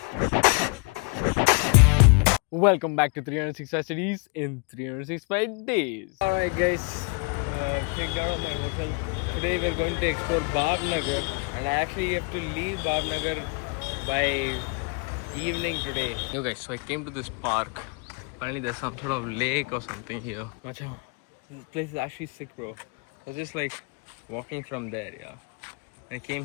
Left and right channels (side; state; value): right; quieter; 35.1 dB